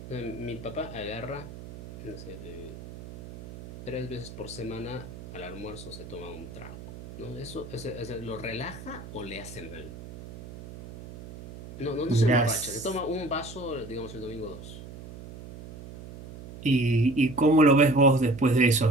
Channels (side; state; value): right; noise; hum, 14 dB below the sound